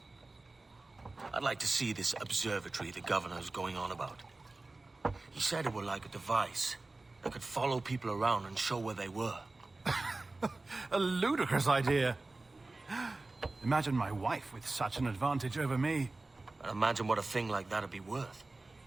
I'd like to see this observatory the governor's going on about. He said it were like a device that could follow people around and show where they were. A ludicrous idea. Imagine my wife with such an advantage over me. And imagine what a thing like that'd be worth.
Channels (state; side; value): quieter; left; 3.2 dB